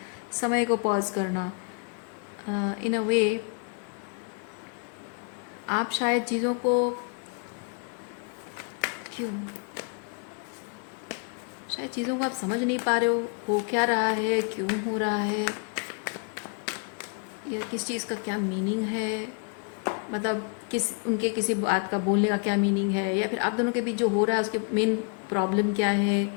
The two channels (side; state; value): right; quieter; 38.5 dB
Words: समय को पॉज करना। इन अ वे आप शायद चीज़ों को शायद चीज़ों को आप समझ नहीं पा रहे हो क्या रहा है, क्यों हो रहा है, या किस चीज़ का क्या मीनिंग है, मतलब उनके किसी बात का बोलने का क्या मीनिंग है, या फिर आप दोनों के बीच जो हो रहा है उसके मेन प्रॉब्लम क्या है,